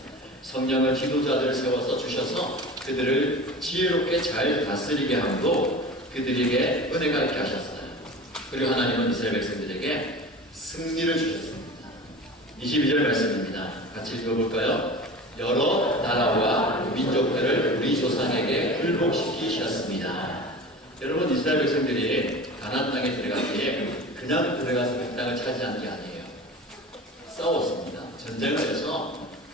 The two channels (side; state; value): both; normal; correlation 0.35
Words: 성령을 지도자들을 세워서 주셔서 그들을 지혜롭게 잘 다스리게 함으로 그들에게 은혜가 있게 하셨어요. 그리고 하나님은 이스라엘 백성들에게 승리를 주셨습니다. 22절 말씀입니다. 같이 읽어볼까요? 여러 나라와 민족들을 우리 조상에게 굴복시키셨습니다. 여러분 이스라엘 백성들이 가나안 땅에 들어가기에 그냥 들어가서 그 땅을 차지한 게 아니에요. 싸웠습니다. 전쟁을 해서